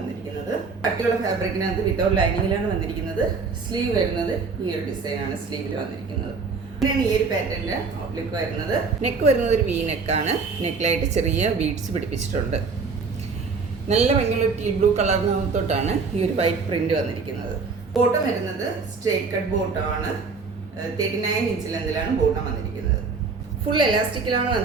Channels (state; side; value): quieter; left; 4.7 dB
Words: കട്ടിയുള്ള ഫാബ്രിക്കിനകത്ത് വിത്തൗട്ട് ലൈനിങ്ങിലാണ് വന്നിരിക്കുന്നത്. സ്ലീവ് വരുന്നത് ഈ ഒരു ഡിസൈൻ ആണ് സ്ലീവിൽ വന്നിരിക്കുന്നത്. ഇങ്ങനെയാണ് ഈ ഒരു പാറ്റേണിന്റെ ഔട്ട്ലുക്ക് വരുന്നത്. നെക്ക് വരുന്നത് ഒരു വി നെക്കാണ്. നെക്കിലായിട്ട് ചെറിയ ബീഡ്സ് പിടിപ്പിച്ചിട്ടുണ്ട്. നല്ല ഭംഗിയുള്ള ടീ ബ്ലൂ കളറിനകത്തോട്ടാണ് ഈ ഒരു വൈറ്റ് പ്രിന്റ് വന്നിരിക്കുന്നത്. ബോട്ടം വരുന്നത് സ്ട്രേറ്റ് കട്ട് ബോട്ടമാണ്. 39 ഇഞ്ച് ലെന്തിലാണ് ബോട്ടം വന്നിരിക്കുന്നത്. ഫുൾ എലാസ്റ്റിക്കിലാണ്